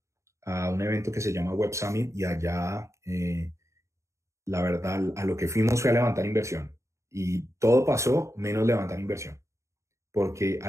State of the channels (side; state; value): left; late; 0.14 ms